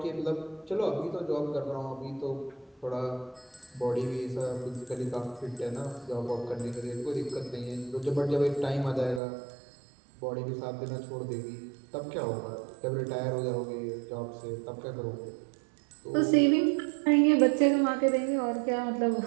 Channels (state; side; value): drops out; left; at 9.2 s